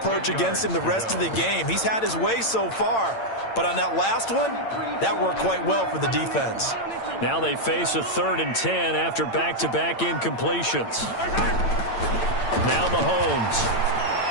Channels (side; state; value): right; late; 8.8 ms